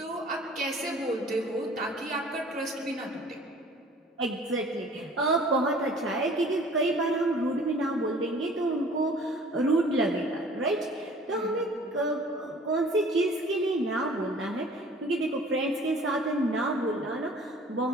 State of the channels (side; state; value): both; normal; correlation 0.50